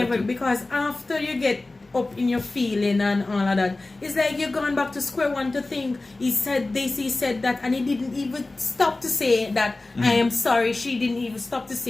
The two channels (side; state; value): right; quieter; 3.1 dB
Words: in that view. too. Because after you get up in your feeling and all of that, it's like you're going back to square one to think he said this, he said that, and he didn't even stop to say that I am sorry. She didn't even stop to